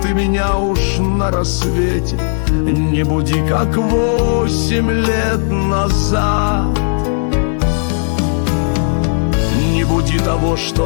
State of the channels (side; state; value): right; silent; digital silence